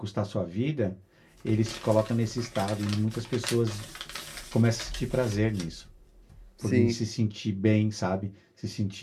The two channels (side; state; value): both; identical; correlation 1.00